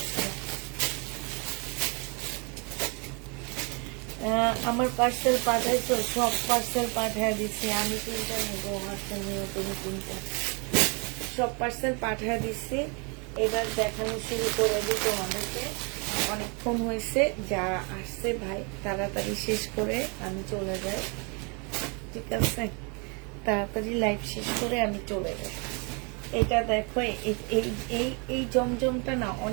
আমার পার্সেল পাঠাইছো, সব পার্সেল পাঠায় দিচ্ছি। আমি 3টা নেবো, পার্সেল নিয়ে তুমি 3টা, সব পার্সেল পাঠায় দিচ্ছি। এবার দেখানো শুরু করে দিই তোমাদেরকে। অনেকক্ষণ হয়েছে, যারা আসছে ভাই তাড়াতাড়ি শেষ করে আমি চলে যাই, ঠিক আছে? তাড়াতাড়ি লাইভ শেষ করে আমি চলে যাই। এটা দেখো, এই জমজমটা না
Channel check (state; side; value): quieter; left; 33.7 dB